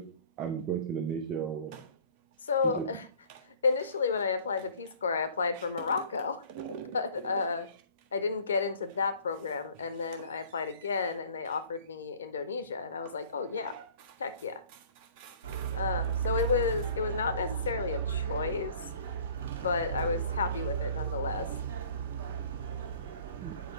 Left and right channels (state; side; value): inverted; both; correlation -0.51